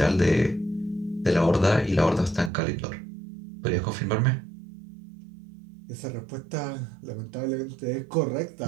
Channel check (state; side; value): drops out; left; at 2.5 s